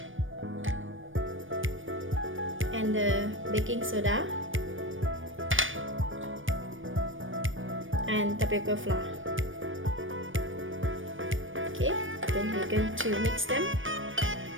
and the baking soda and tapioca flour. Okay, then we're going to mix them.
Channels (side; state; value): left; late; 0.57 ms